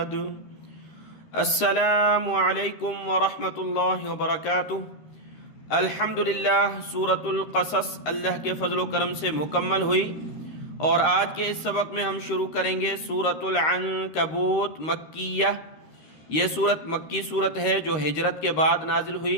अस्सलामु अलैकुम वरहमतुल्लाहि वबरकातुह। अल्हम्दुलिल्लाह, सूरतुल क़सस अल्लाह के फ़ज़्ल व करम से मुकम्मल हुई और आज के इस सबक में हम शुरू करेंगे सूरतुल अनकबूत मक्किया। ये सूरत मक्की सूरत है जो हिजरत के बाद नाजिल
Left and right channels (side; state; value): right; late; 13 ms